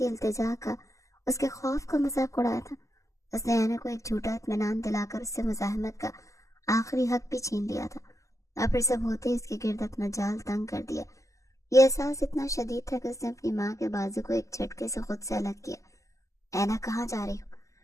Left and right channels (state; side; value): late; right; 0.16 ms